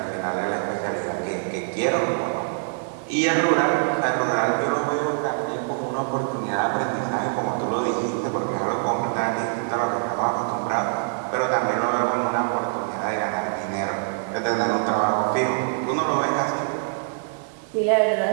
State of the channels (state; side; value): silent; left; digital silence